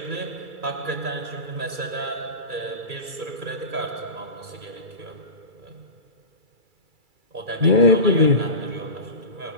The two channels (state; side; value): late; left; 2.3 ms